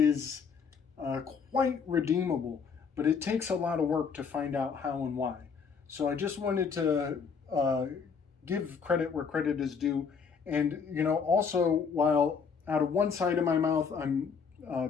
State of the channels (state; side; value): quieter; right; 5.9 dB